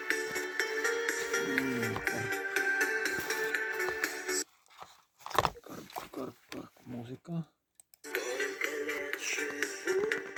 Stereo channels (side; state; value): both; identical; correlation 1.00